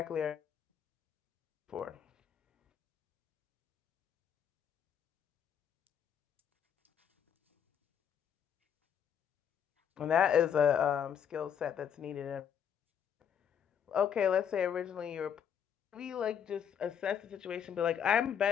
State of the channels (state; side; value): quieter; right; 8.5 dB